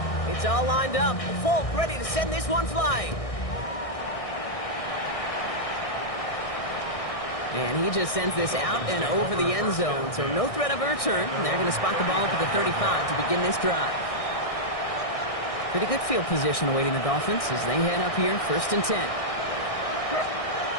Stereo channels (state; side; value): late; right; 1.6 ms